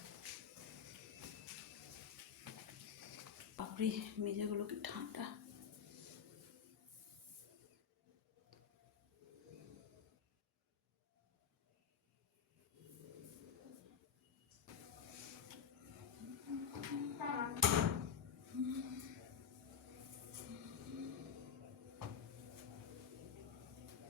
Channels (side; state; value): right; quieter; 7.6 dB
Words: বাপরে মেজাগুলো কি ঠান্ডা।